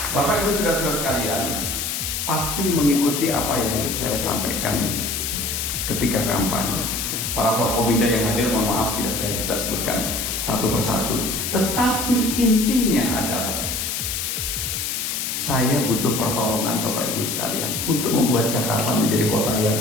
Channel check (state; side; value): noise; left; hiss, 2 dB below the sound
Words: Bapak Ibu saudara sekalian, pasti mengikuti apa yang saya sampaikan ketika kampanye. Para Forkobida yang hadir, mohon maaf tidak saya bisa sebutkan satu persatu. Tetapi intinya adalah saya butuh pertolongan Bapak Ibu sekalian untuk membuat Jakarta menjadi kota yang